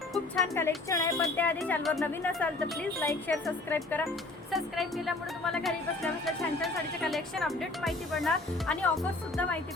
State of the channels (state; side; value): quieter; right; 3.0 dB